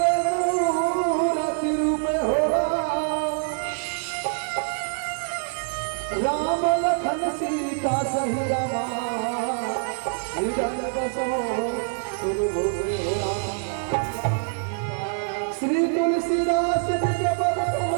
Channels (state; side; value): silent; left; digital silence